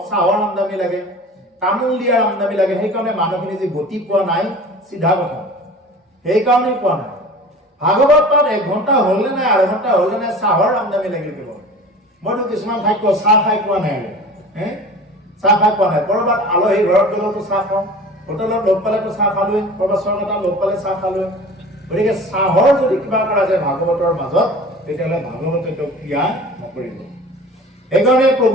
চাহৰ আমদানি লাগে, তামোল দিয়াৰ আমদানি লাগে। সেইকাৰণে মানুহখিনি যে গতি পোৱা নাই, চিধা কথা, সেইকাৰণেই পোৱা নাই। ভাগৱত পাঠ 1 ঘণ্টা হ'ল নে নাই, আধা ঘণ্টা হ'ল নে নাই, চাহৰ আমদানি লাগিল কেৱল। মইতো কিছুমান ঠাইত চাহ খাই পোৱা নাই, চাহ খাই পোৱা নাই। ক'ৰবাত আলহী ঘৰত গ'লেতো চাহ খাওঁ, হোটেলত লগ পালেতো চাহ খালোৱেই, ক'ৰবাত চৰকাৰত লগ পালে চাহ খালোৱেই। গতিকে চাহৰ যদি কিবা কৰা যায় ভাগৱতৰ মাজত, তেতিয়াহ'লে ভাগৱতে তেওঁ ক্ৰিয়া নকৰিব। সেইকাৰণে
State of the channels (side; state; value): both; normal; correlation 0.40